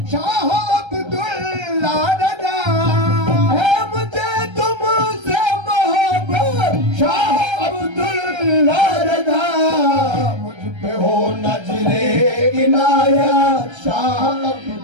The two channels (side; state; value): left; late; 1.3 ms